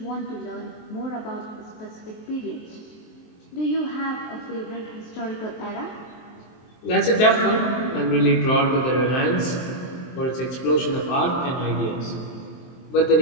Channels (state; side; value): late; right; 23 ms